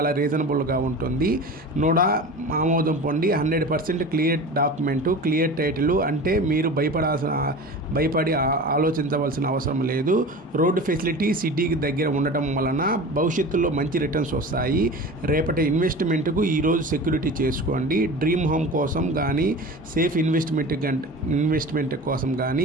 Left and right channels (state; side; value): normal; both; correlation 0.34